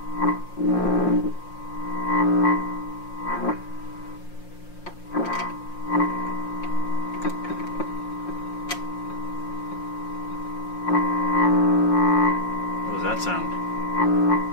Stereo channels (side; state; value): right; late; 5.6 ms